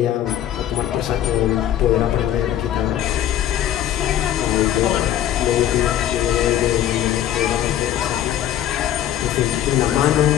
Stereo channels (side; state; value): right; quieter; 11.4 dB